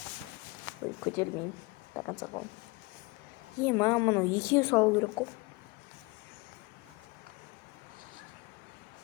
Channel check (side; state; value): right; quieter; 25.2 dB